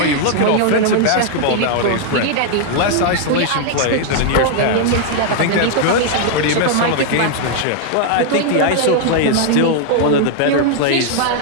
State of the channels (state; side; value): different; both; correlation 0.00